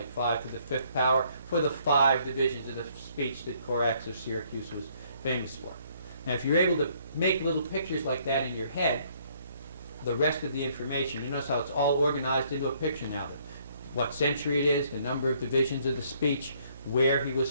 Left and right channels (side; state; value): both; inverted; correlation -0.65